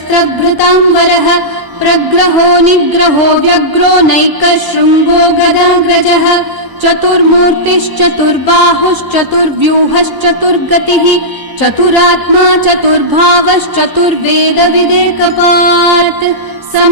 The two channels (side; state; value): left; late; 1.0 ms